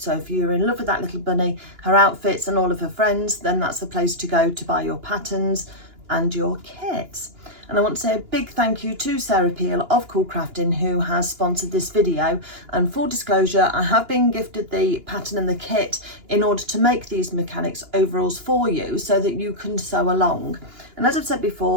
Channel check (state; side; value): late; left; 2.9 ms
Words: if you're in love with that little bunny, her outfits and all of her friends, then that's the place to go to buy your patterns and your kits. And I want to say a big thank you to Sarah Peel of CoolCrafting, who has sponsored this video. And full disclosure, I have been gifted the pattern and the kit in order to make these mechanics overalls for you so that you can sew along. And as I've said